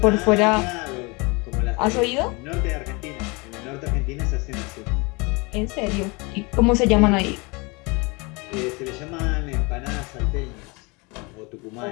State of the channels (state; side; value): quieter; right; 27.8 dB